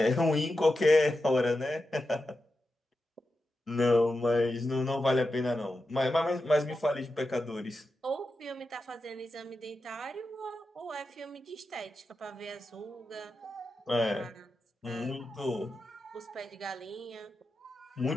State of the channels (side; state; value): both; normal; correlation 0.90